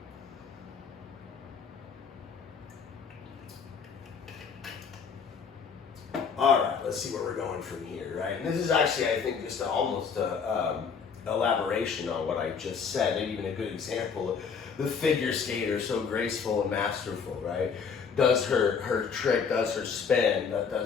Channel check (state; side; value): quieter; right; 6.0 dB